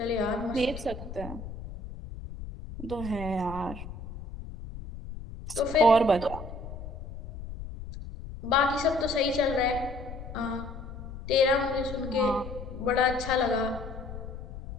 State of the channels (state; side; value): noise; left; rumble, 10 dB below the sound